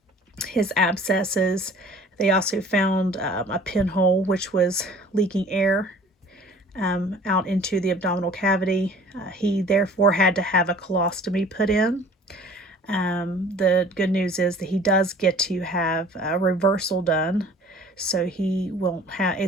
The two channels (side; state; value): both; normal; correlation 0.49